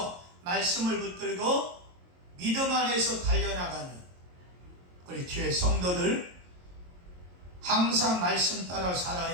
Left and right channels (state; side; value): late; left; 22 ms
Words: 말씀을 붙들고 믿음 안에서 달려나가는 우리 주의 성도들, 항상 말씀 따라